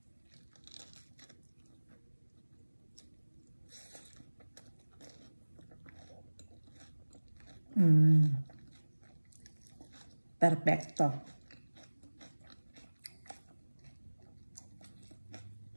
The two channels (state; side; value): inverted; both; correlation -1.00